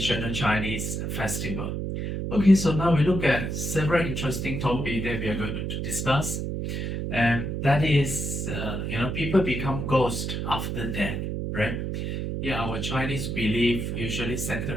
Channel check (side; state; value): right; noise; hum, 3 dB below the sound